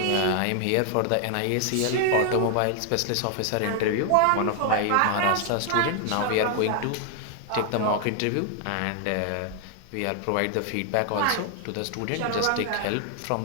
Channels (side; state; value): both; different; correlation 0.00